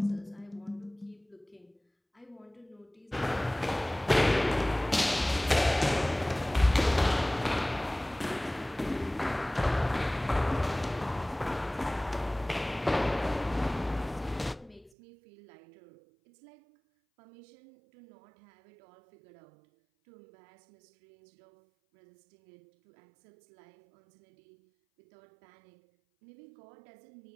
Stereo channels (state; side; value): drops out; left; at 14.9 s